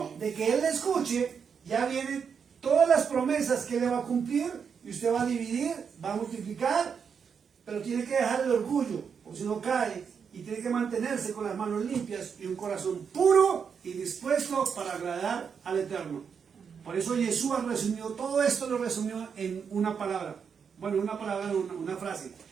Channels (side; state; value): left; quieter; 6.6 dB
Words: de que Él le escuche, ya vienen todas las promesas que Él le va a cumplir, y usted va a dividir, va a multiplicar, pero tiene que dejar el orgullo, porque si no cae, y tiene que mantenerse con las manos limpias y un corazón puro y dispuesto para agradar al Eterno. Por eso Yeshua resumió, todo esto lo resumió en una palabra. Bueno, una frase.